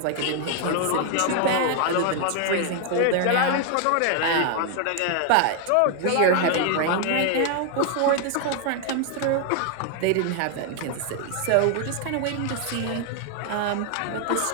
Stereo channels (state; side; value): different; both; correlation 0.00